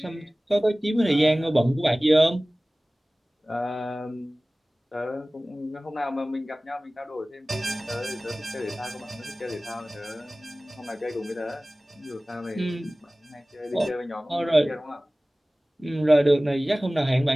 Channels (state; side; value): normal; both; correlation 0.98